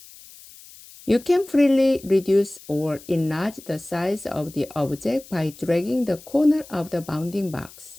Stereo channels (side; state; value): left; noise; hiss, 20 dB below the sound